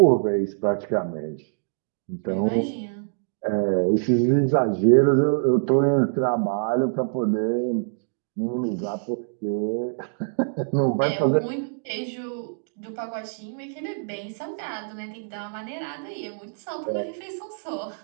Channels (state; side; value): silent; left; digital silence